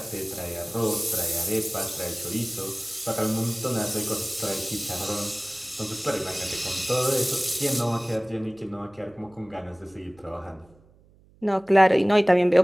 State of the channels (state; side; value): noise; right; hum, 29 dB below the sound